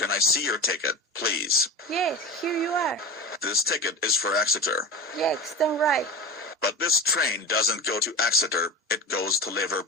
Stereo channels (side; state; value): both; normal; correlation 0.29